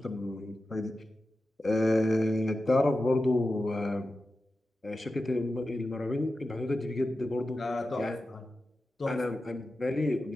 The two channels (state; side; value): normal; both; correlation 0.92